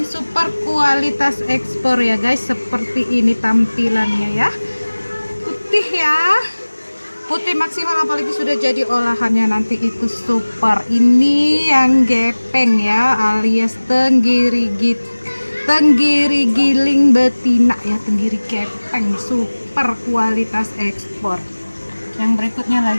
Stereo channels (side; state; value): both; inverted; correlation -1.00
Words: super kualitas ekspor ya guys. Seperti ini tampilannya ya. Putih ya, putih maksimal, apalagi sudah jadi olahannya nanti itu super. Ini yang gepeng ya, alias tenggiri giling betina ya, tenggiri gepeng super kualitas ekspor. Yang berikutnya